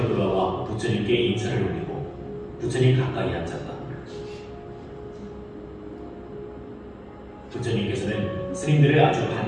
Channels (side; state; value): both; identical; correlation 1.00